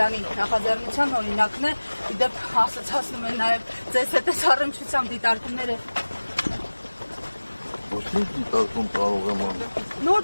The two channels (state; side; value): inverted; both; correlation -1.00